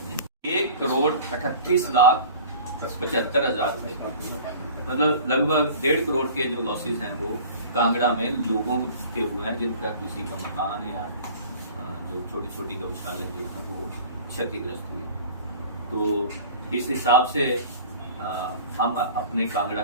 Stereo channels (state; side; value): inverted; both; correlation -0.42